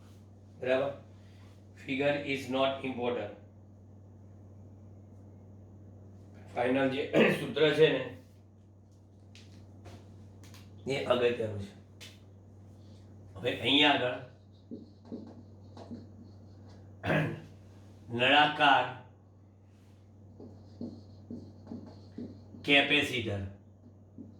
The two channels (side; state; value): both; identical; correlation 1.00